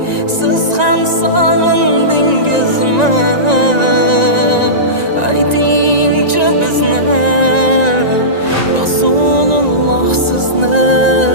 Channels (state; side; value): late; left; 1.9 ms